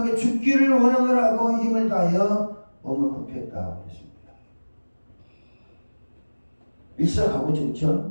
죽기를 원하노라고 힘을 다하여 몸을 굽혔다. 그랬습니다. 일사각오죠,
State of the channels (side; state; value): both; inverted; correlation -1.00